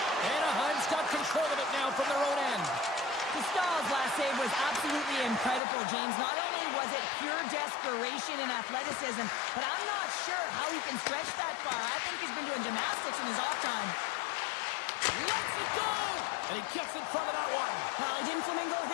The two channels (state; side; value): drops out; right; at 5.6 s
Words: Anaheim's got control of it now from their own end. Stahl's last save was absolutely incredible, James. Not only was it pure desperation and athleticism, but I'm not sure how he can stretch that far. I think he's been doing gymnastics in his off time. Lets it go! And he gets in front of that one. Well, he didn't flamingo